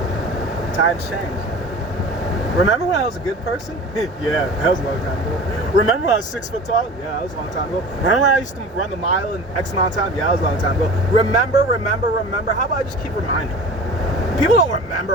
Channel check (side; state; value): both; normal; correlation 0.38